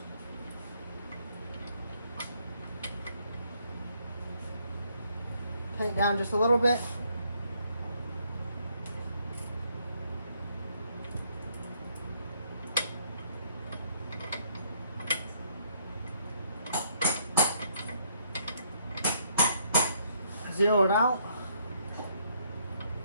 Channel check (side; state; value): both; inverted; correlation -0.68